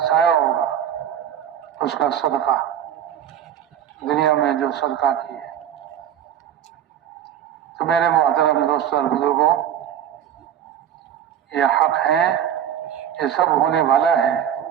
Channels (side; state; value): left; quieter; 9.8 dB